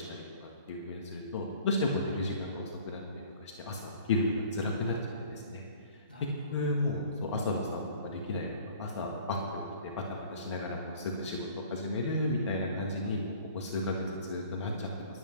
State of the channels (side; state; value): both; inverted; correlation -0.50